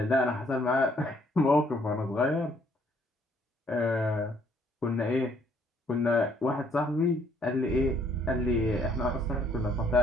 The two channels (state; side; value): normal; both; correlation 0.65